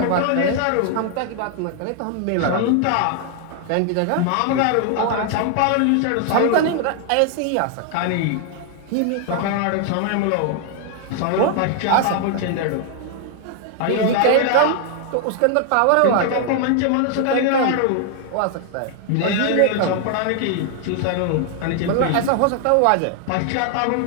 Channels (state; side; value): different; both; correlation 0.00